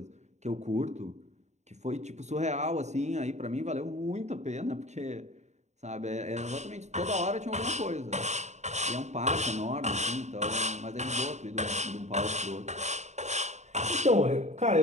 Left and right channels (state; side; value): late; left; 0.33 ms